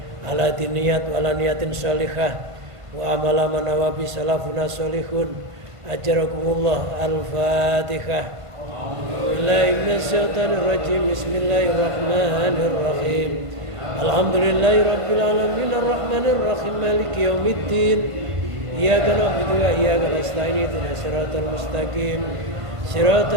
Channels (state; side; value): late; left; 1.5 ms